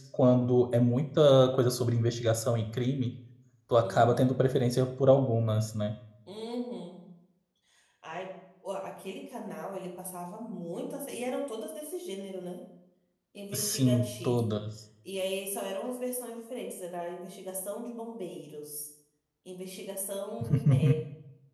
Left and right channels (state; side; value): identical; both; correlation 1.00